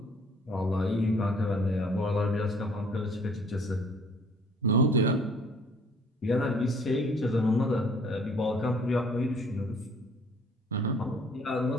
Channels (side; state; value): both; normal; correlation 0.56